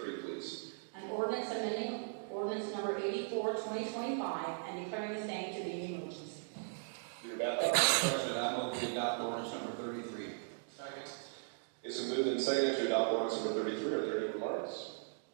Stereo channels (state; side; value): silent; left; digital silence